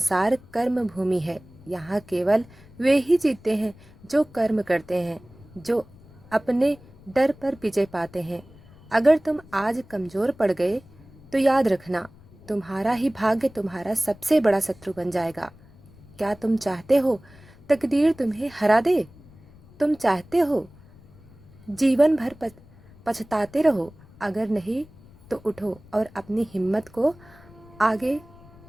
कर्म भूमि है। यहाँ केवल वे ही जीतते हैं जो कर्म करते हैं, जो अपने डर पर विजय पाते हैं। अगर तुम आज कमजोर पड़ गए तो याद रखना, तुम्हारा ही भाग्य तुम्हारा सबसे बड़ा शत्रु बन जाएगा। क्या तुम चाहते हो तकदीर तुम्हें हरा दे? तुम चाहते हो जीवन भर पछताते रहो? अगर नहीं तो उठो और अपनी हिम्मत को आगे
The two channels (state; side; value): noise; left; rumble, 24 dB below the sound